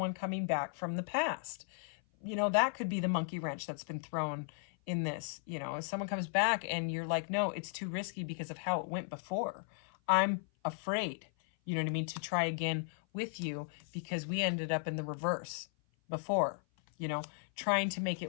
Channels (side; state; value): right; silent; 54 dB below the other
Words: coming back from the past. That could be the monkey wrench that's been thrown in this. If someone comes back and you're like, no, it's too risky because of how it went before. I'm afraid, you know what I mean, to try again with you because we ended up in the reverse before, trying to make